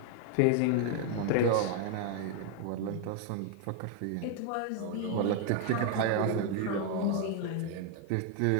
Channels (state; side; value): different; both; correlation 0.00